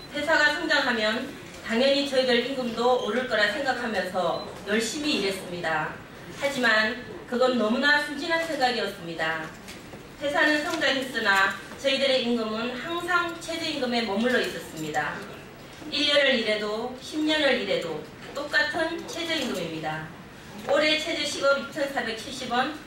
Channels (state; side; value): identical; both; correlation 1.00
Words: 회사가 성장하면 당연히 저희들 임금도 오를 거라 생각하면서 열심히 일했습니다. 하지만 그건 너무나 순진한 생각이었습니다. 회사는 성장했으나 저희들의 임금은 항상 최저임금에 머물러 있었습니다. 1년을 일해도 10년을 일해도 똑같은 최저임금입니다. 올해 최저시급 2,470원,